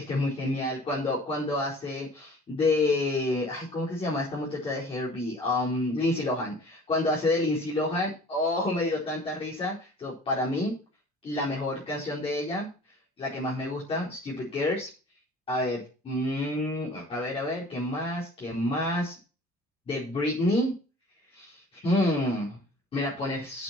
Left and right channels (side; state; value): both; normal; correlation 0.47